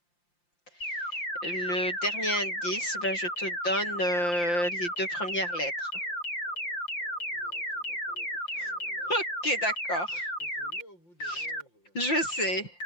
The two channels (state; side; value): late; right; 5.8 ms